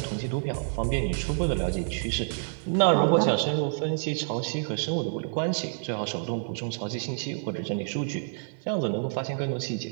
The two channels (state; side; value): silent; left; 59 dB below the other